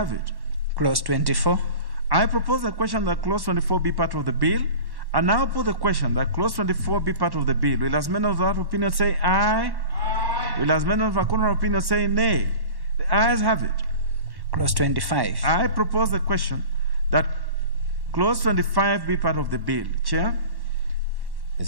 it. Clause 24. I propose the question that clause 24 be part of the bill. I now put the question that clause 24 be part of the bill. Will as many of that opinion say aye? Aye. Will as many of our contrary opinion say nay? The ayes have it. Clause 25. I propose the question that clause 25 be part of the bill. Chair?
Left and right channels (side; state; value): left; late; 1.1 ms